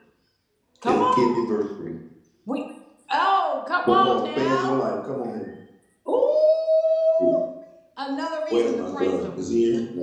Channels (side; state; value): both; identical; correlation 1.00